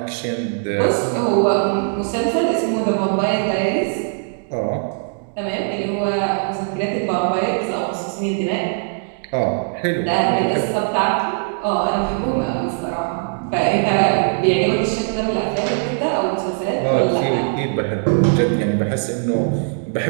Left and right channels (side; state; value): left; silent; 65 dB below the other